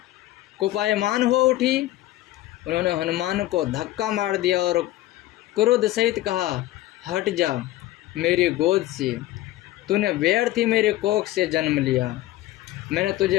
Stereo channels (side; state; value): right; quieter; 15.7 dB